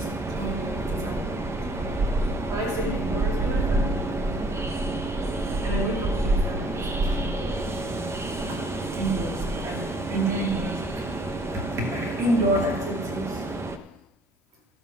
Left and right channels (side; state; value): both; normal; correlation 0.58